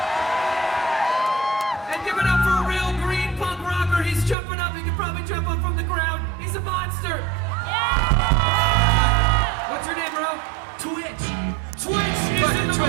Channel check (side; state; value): left; drops out; at 4.4 s